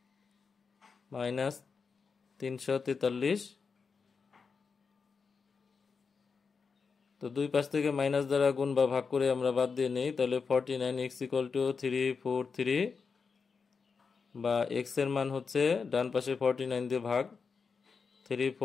-343। তো দুই পাশ থেকে মাইনাস দ্বারা গুণ বা ভাগ করে আমরা বাদ দিয়ে নেই, তাহলে 49x = 343, বা x এর মান হচ্ছে ডান পাশে 49 দিয়ে ভাগ,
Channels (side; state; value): right; quieter; 5.3 dB